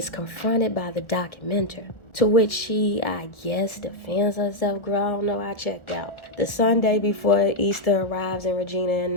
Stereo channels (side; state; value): right; late; 1.4 ms